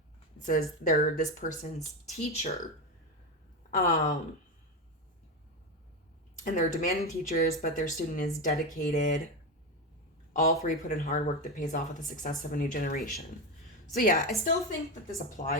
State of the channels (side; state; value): both; normal; correlation 0.15